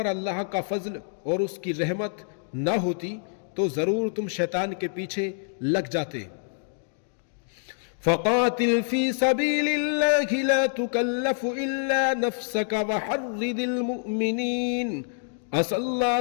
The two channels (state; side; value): silent; right; digital silence